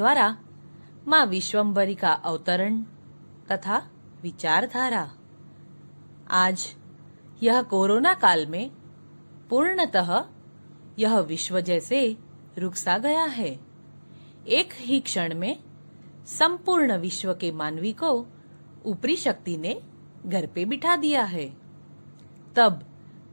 मां विश्वम्भरी का अवतरण तथा विचारधारा। आज यह कोरोना काल में पूर्णतः यह विश्व जैसे रुक सा गया है। एक ही क्षण में संपूर्ण विश्व के मानवी को ऊपरी शक्ति ने घर पे बिठा दिया है। तब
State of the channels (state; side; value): inverted; both; correlation -1.00